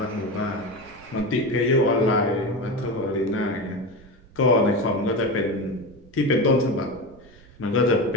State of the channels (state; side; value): noise; right; rumble, 24 dB below the sound